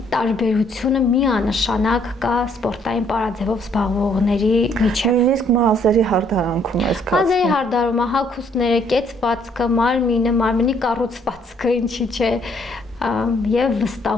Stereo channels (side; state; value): both; normal; correlation 0.66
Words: տարբերությունը միանշանակ կա սպորտային պարաձևով զբաղվողների միջև։ Նույնիսկ մազերի հարդարանքում է զգացվում։ Մազերի հարդարումը, հագուստները, կեցվածքը, մարմինը, մարմնի կառուցվածքը, ինչի՞ չէ, եւ